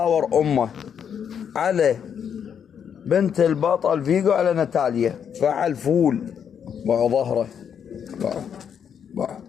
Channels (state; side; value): quieter; right; 7.9 dB